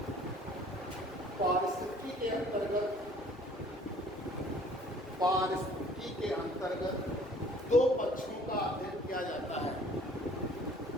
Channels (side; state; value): both; normal; correlation 0.54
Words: पारिस्थितिकी के अंतर्गत दो पक्षों का अध्ययन किया जाता है,